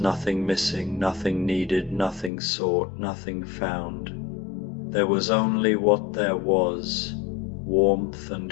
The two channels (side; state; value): right; drops out; at 2.3 s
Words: missing, nothing needed, nothing sought, nothing found. There was only what there was, warmth